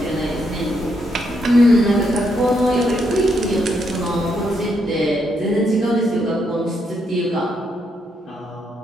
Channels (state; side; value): normal; both; correlation 0.77